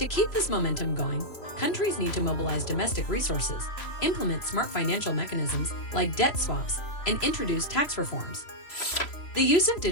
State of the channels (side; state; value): right; late; 3.0 ms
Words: keep this momentum going, countries need to mobilize domestic resources, implement smart financial mechanisms like debt swaps, and introduce tax reforms. The use of